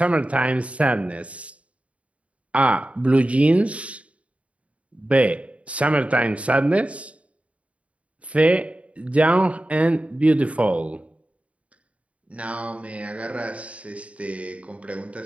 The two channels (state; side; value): late; left; 0.064 ms